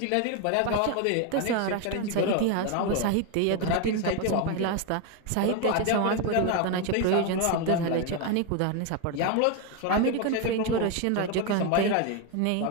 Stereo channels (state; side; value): different; both; correlation 0.01